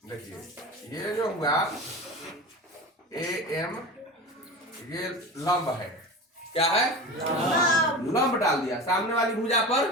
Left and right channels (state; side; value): normal; both; correlation 0.30